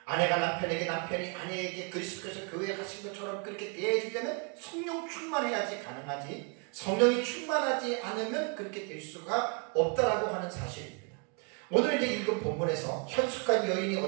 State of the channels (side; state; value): left; quieter; 35.4 dB